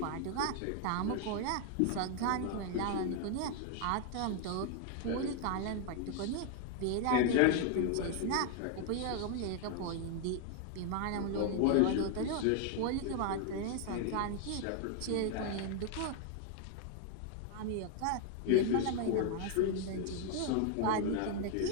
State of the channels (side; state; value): both; different; correlation 0.00